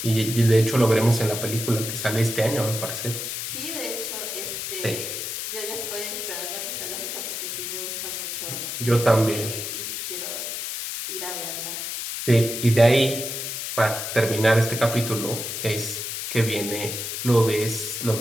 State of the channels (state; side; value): noise; left; hiss, 4 dB below the sound